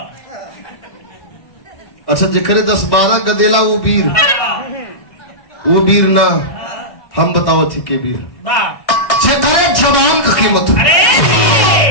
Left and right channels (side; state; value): right; late; 2.0 ms